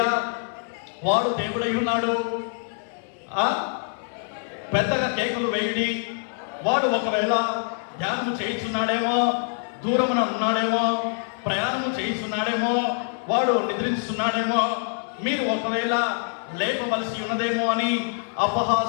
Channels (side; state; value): right; silent; 62 dB below the other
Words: వాడు దేవుడై ఉన్నాడు, పెద్దగా కేకులు వేయండి. వాడు ఒకవేళ ధ్యానం చేయించున్నాడేమో, దూరమున ఉన్నాడేమో, ప్రయాణం చేయిస్తున్నాడేమో, వాడు నిద్రిస్తున్నాడేమో, మీరు ఒకవేళ లేపవలసి ఉన్నదేమో అని